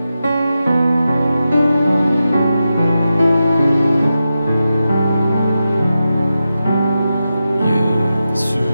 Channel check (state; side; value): inverted; both; correlation -0.90